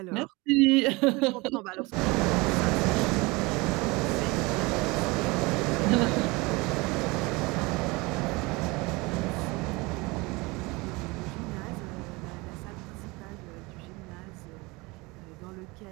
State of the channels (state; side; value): quieter; left; 24.4 dB